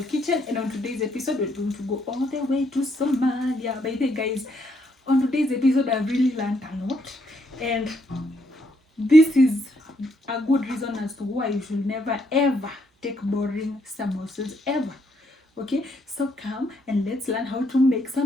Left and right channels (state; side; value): normal; both; correlation 0.73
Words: Kitchen. And on today's episode, we're going to go all the way to Somalia. By the way, guys, on today's episode, I've really learned a lot. And this is a good reason as to why you should never ever take boring samosas ever. Okay, so come and let's learn how to make